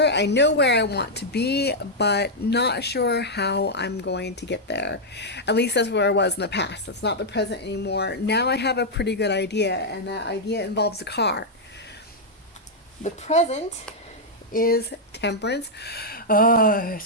I know where I want to be, but not sure how I'm going to get there. At least that's where I was in the past. That's not the present anymore. Now I have a pretty good idea, and that idea involves a car. The present is Temperance. Oh,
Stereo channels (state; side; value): normal; both; correlation -0.04